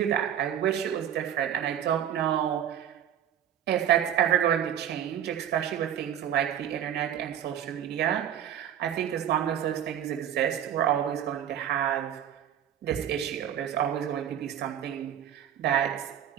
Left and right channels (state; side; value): quieter; left; 9.9 dB